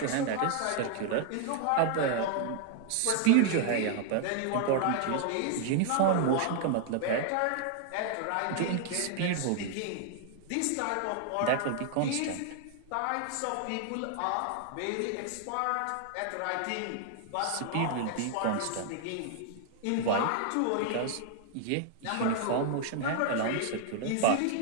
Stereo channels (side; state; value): both; different; correlation 0.00